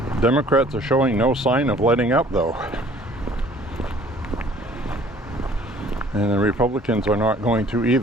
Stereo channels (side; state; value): both; normal; correlation 0.54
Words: Democrats are showing no sign of letting up, though. And the Republicans are not going to